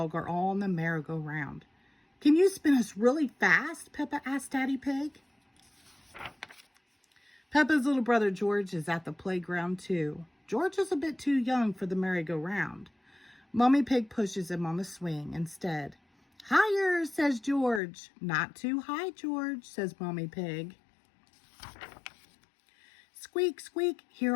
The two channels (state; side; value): drops out; right; at 17.8 s